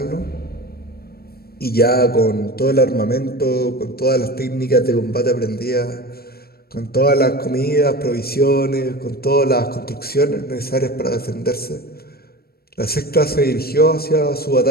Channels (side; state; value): right; late; 0.45 ms